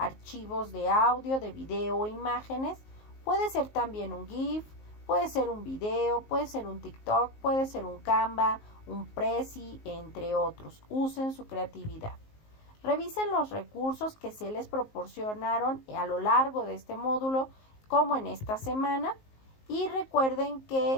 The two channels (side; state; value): right; late; 19 ms